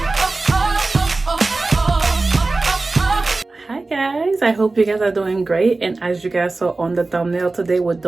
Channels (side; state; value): left; quieter; 3.4 dB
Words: I hope you guys are doing great, and as you guys saw on the thumbnail, today we're